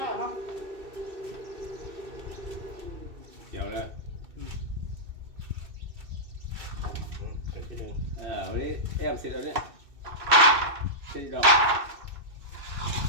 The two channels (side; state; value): left; late; 2.6 ms